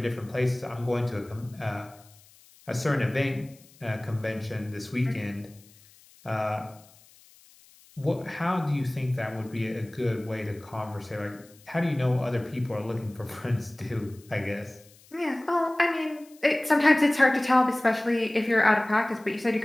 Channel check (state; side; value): noise; left; hiss, 26 dB below the sound